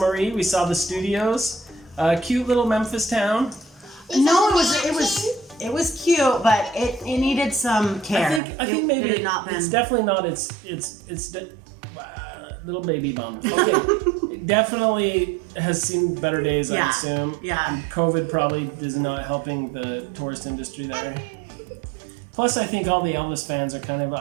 We saw the studios. Cute little Memphis town. No, it was cute, but it needed some care. I think maybe it had not been. It's definitely not. It's little baby bum. Okay, it definitely has seen better days. I assume. Yeah. COVID probably is not helping the tourist industry there. Plus, I think all the Elvis fans are kind of,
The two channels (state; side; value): drops out; left; at 8.4 s